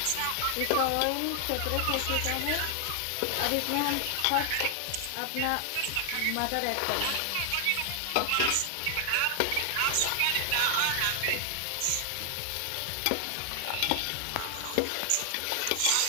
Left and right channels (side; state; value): both; different; correlation 0.00